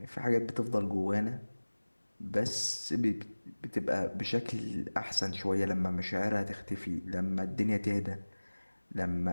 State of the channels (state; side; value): inverted; both; correlation -1.00